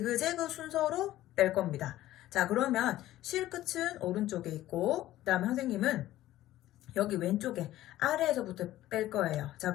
순서로 뺄 겁니다. 자, 그러면 실 끝은 오른쪽에 있고, 그 다음에 선생님은 여기 왼쪽에 아래에서부터 뺄 거예요. 자,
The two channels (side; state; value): right; quieter; 14.7 dB